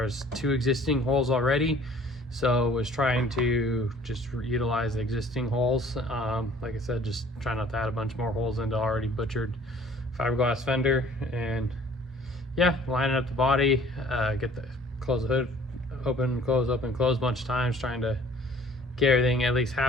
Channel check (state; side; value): normal; both; correlation 0.53